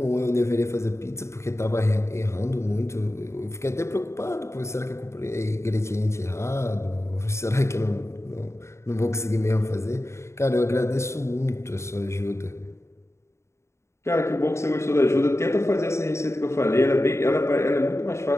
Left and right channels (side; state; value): right; late; 0.13 ms